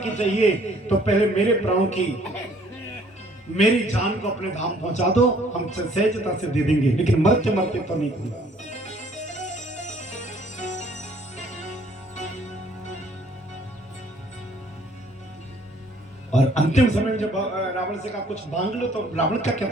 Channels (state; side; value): normal; both; correlation 0.59